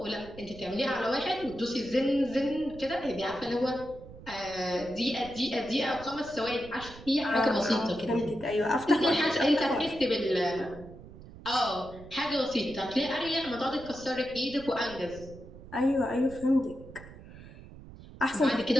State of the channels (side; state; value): right; noise; rumble, 17 dB below the sound